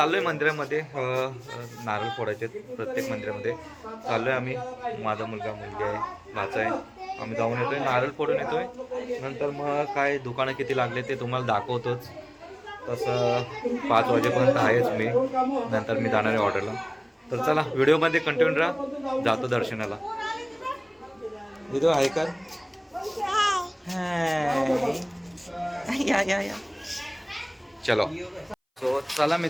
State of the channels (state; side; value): identical; both; correlation 1.00